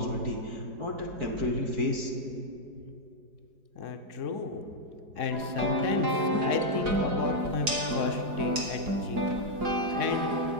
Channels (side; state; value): left; late; 4.8 ms